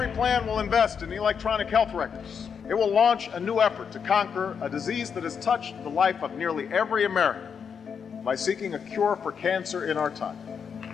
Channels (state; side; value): quieter; right; 6.7 dB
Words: plan will invest in electronic health records. It will launch a new effort to conquer a disease that has touched the life of nearly every American by seeking a cure for cancer in our time.